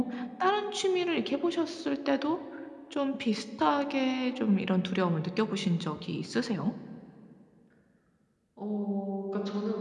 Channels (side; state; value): both; identical; correlation 1.00